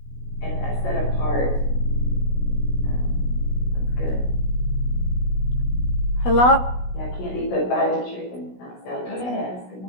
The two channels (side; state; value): right; late; 16 ms